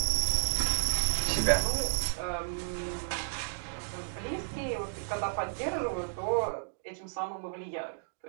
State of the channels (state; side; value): silent; left; digital silence